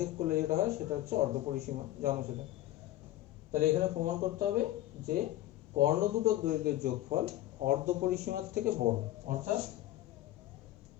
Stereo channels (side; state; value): right; quieter; 15.0 dB